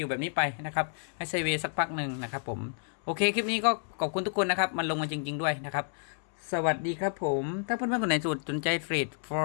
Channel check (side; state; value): right; silent; 58 dB below the other